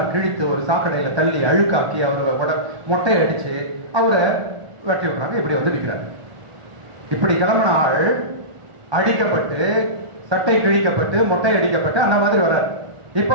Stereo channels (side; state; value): left; late; 1.2 ms